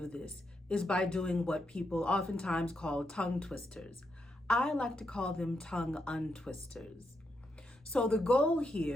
this is by doing what people oftentimes call tongue twisters. I like to call them tongue untwisters. So the goal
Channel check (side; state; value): both; normal; correlation 0.82